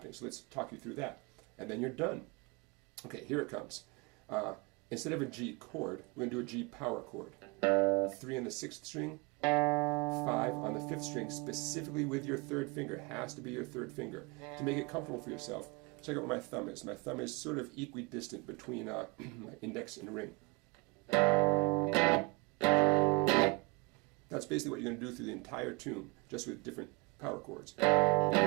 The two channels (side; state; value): left; quieter; 27.2 dB